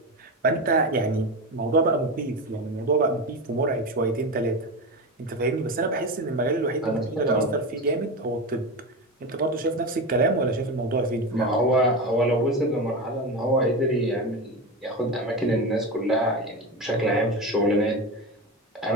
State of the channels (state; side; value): normal; both; correlation 0.21